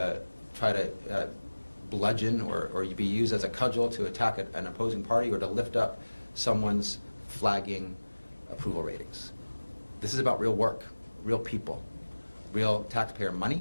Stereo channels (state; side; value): inverted; both; correlation -1.00